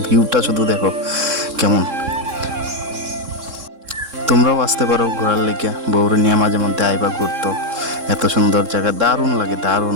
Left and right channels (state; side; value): late; left; 3.7 ms